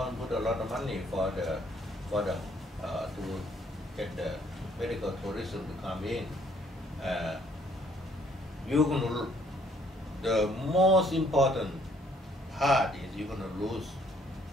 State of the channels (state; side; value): normal; both; correlation 0.64